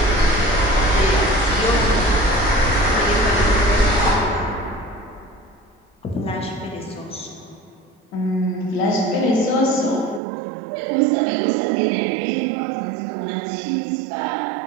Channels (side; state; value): left; drops out; at 10.2 s